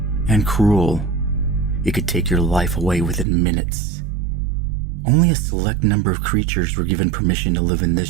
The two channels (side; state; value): left; drops out; at 3.2 s